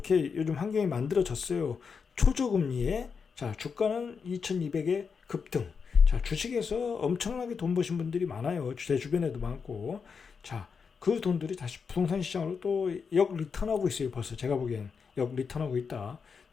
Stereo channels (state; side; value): quieter; right; 5.8 dB